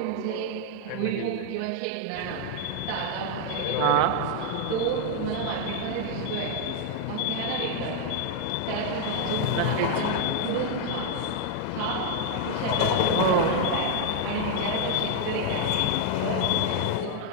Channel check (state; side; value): different; both; correlation 0.00